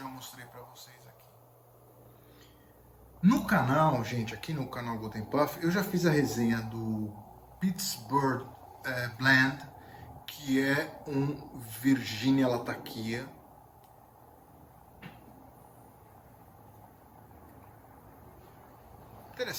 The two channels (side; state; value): both; identical; correlation 1.00